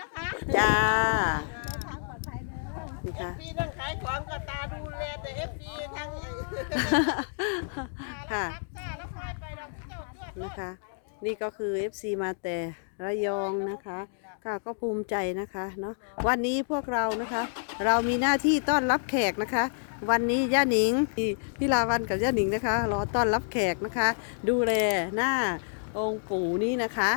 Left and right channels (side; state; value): right; silent; digital silence